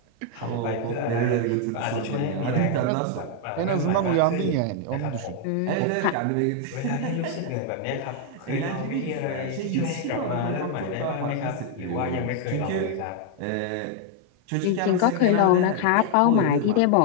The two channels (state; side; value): different; both; correlation 0.00